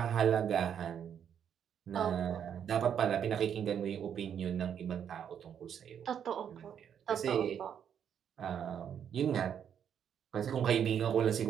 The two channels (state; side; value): quieter; left; 8.5 dB